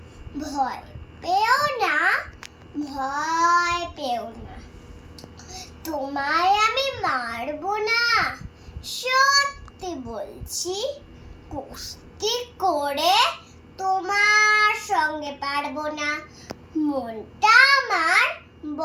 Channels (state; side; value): identical; both; correlation 1.00